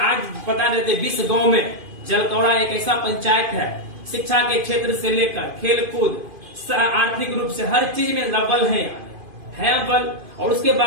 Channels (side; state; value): left; late; 2.5 ms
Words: आज बता देते 20 गाँव में जलकौड़ा एक ऐसा पंचायत है, शिक्षा के क्षेत्र से लेकर खेल कूद आर्थिक रूप से हर चीज में अव्वल है अव्वल, और उसके